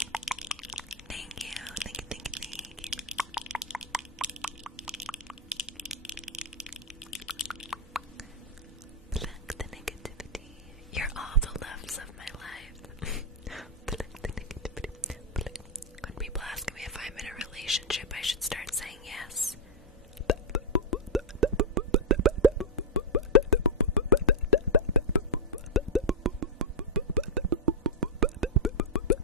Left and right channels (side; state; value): both; normal; correlation -0.02